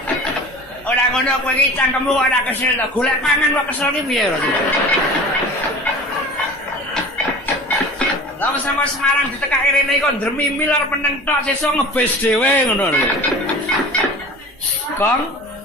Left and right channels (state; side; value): normal; both; correlation 0.39